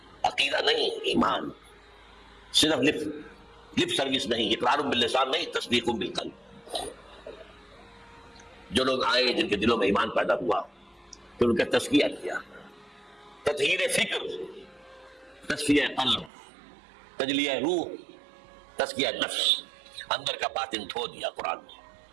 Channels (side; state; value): left; drops out; at 16.3 s